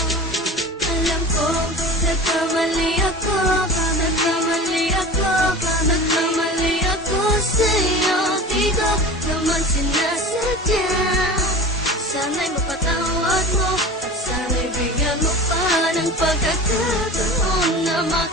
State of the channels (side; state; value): both; normal; correlation 0.34